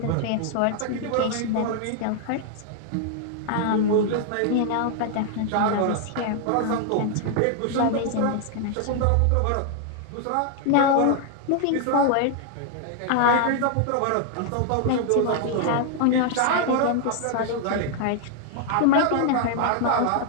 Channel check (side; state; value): both; different; correlation 0.00